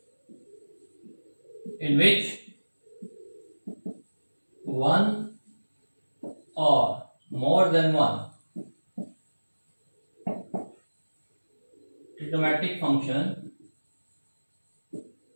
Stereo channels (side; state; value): both; inverted; correlation -1.00